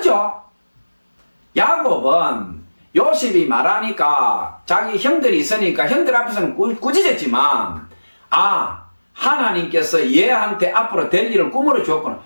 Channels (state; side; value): inverted; both; correlation -1.00